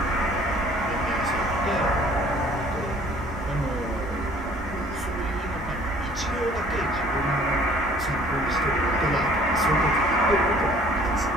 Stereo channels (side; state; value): both; normal; correlation 0.54